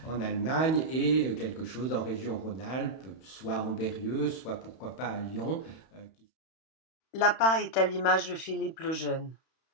Allemagne et quelque chose en région Rhône-Alpes, soit en Berrieux, soit pourquoi pas à Lyon. L'APA est à l'image de Philippe le Jeune.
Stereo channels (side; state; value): right; late; 31 ms